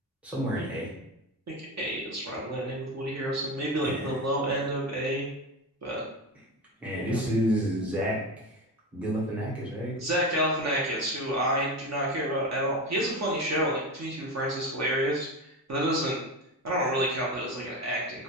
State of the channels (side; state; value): both; normal; correlation 0.22